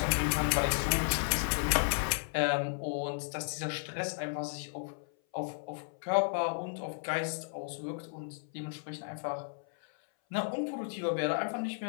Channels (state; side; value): silent; right; 55 dB below the other